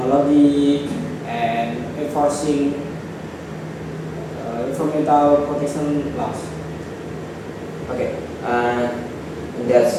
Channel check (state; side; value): identical; both; correlation 1.00